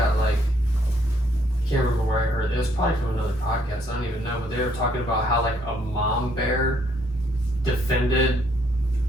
like, I can't remember where I heard it. It was probably from another podcast. I don't even know. But they were talking about how, like, a mom bear defended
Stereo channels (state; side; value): normal; both; correlation 0.69